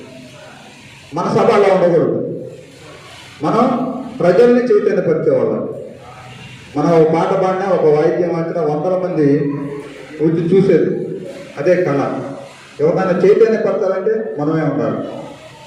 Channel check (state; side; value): identical; both; correlation 1.00